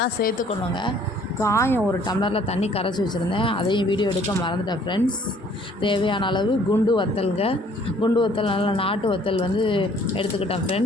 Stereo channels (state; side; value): normal; both; correlation 0.58